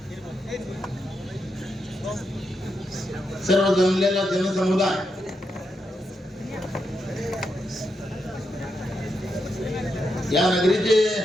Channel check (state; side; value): normal; both; correlation 0.83